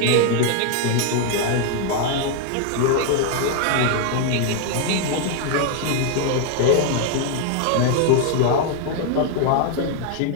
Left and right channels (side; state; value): both; different; correlation 0.00